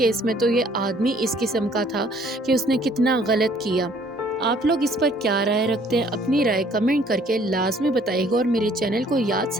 में तो ये आदमी इस किस्म का था कि उसने कितना गलत किया। आप लोग इस पर क्या राय रखते हैं? अपनी राय कमेंट करके लाजमी बताइएगा और मेरे चैनल को याद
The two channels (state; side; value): normal; both; correlation 0.59